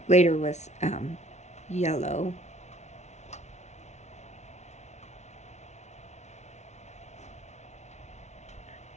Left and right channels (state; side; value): late; right; 0.32 ms